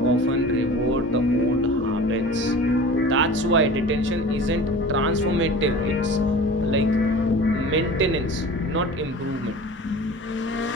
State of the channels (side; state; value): both; normal; correlation 0.39